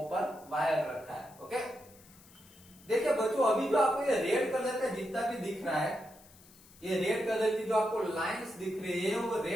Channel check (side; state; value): left; noise; hiss, 24 dB below the sound